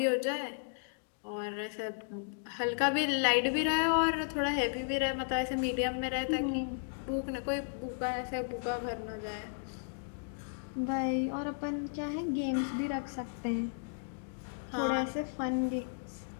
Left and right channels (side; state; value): right; silent; digital silence